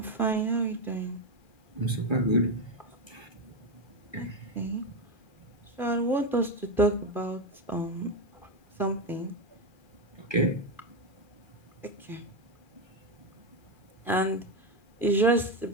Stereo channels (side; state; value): right; late; 2.4 ms